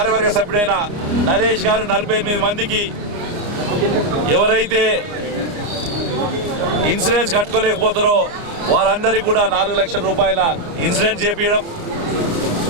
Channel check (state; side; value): late; left; 29 ms